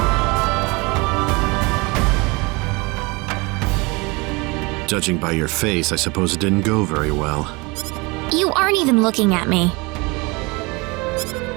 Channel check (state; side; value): quieter; left; 26.2 dB